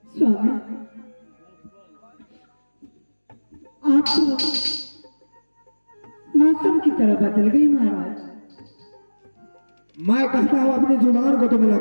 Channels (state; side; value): inverted; both; correlation -1.00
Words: स्वामी आप तो मौसम की तरह बदल गई महाराज। मैं कहता हूं अपनी जुबान को तुम्हें